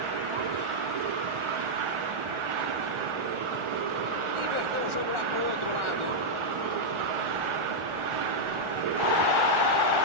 Inverteu o jogo lá pro outro lado.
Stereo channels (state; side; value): late; left; 1.4 ms